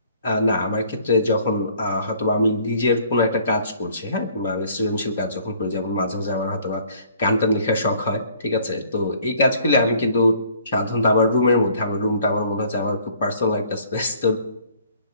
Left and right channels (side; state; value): both; inverted; correlation -0.57